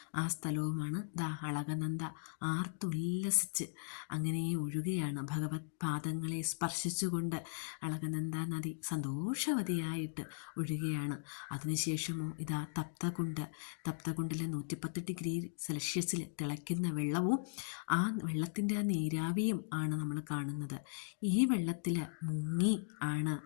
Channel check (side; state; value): right; silent; digital silence